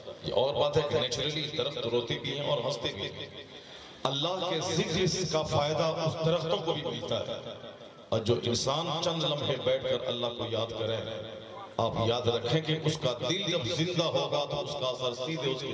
یہ اور بات ہے کہ نیچرلی درخت روتے بھی ہیں اور ہنستے بھی ہیں. اللہ کے ذکر کا فائدہ اس درختوں کو بھی ملتا ہے. اور جو انسان چند لمحے بیٹھ کر اللہ کو یاد کرے، آپ یاد رکھیں کہ اس کا دل جب زندہ ہوگا تو اس کا اثر سیدھے اس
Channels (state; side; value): identical; both; correlation 1.00